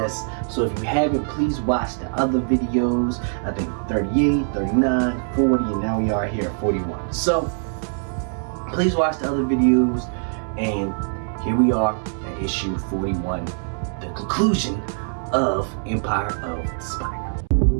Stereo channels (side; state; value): left; silent; 63 dB below the other